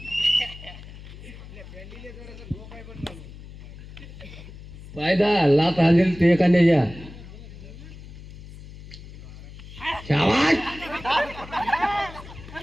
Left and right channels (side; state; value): left; noise; hum, 15 dB below the sound